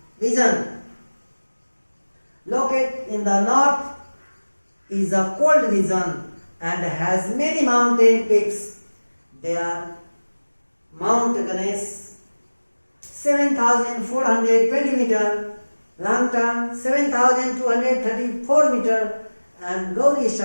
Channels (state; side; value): inverted; both; correlation -1.00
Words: region. Located in the north is a cold region and has many mountain peaks. They are Mount Ganesh 7,420 meter, Langtang 7,234 meter, and Gauri